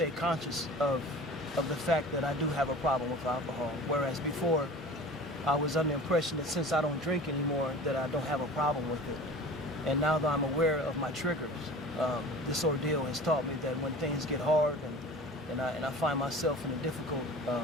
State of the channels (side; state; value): both; normal; correlation 0.39